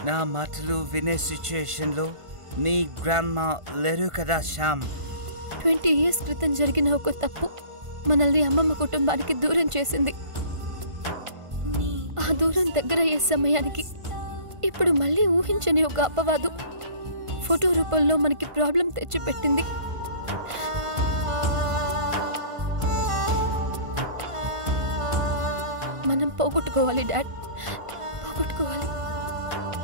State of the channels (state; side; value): late; left; 1.5 ms